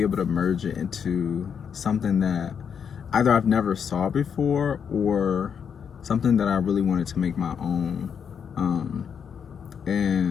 able to merge it into something that either I've never saw before or something that I really wanted to make my own.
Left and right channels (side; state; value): right; quieter; 7.2 dB